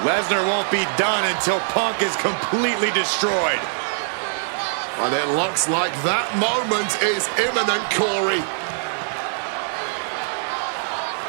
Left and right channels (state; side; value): silent; left; digital silence